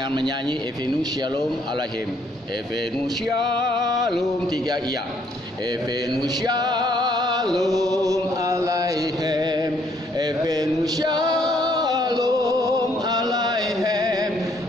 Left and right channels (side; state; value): both; normal; correlation 0.67